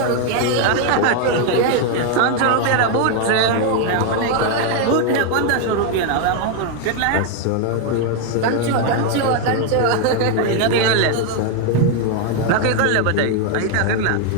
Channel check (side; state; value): both; different; correlation 0.01